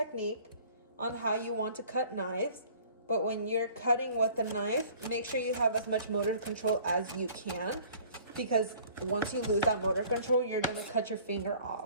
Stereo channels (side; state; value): both; inverted; correlation -0.52